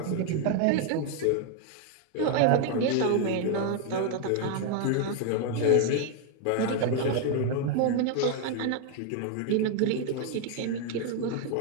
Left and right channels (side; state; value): both; different; correlation 0.00